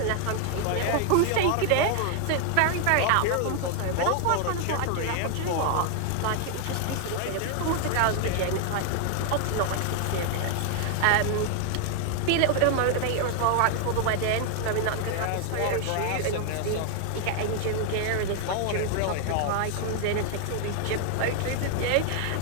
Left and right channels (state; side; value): different; both; correlation 0.00